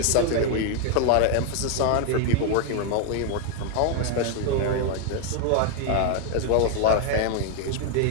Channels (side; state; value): both; different; correlation 0.00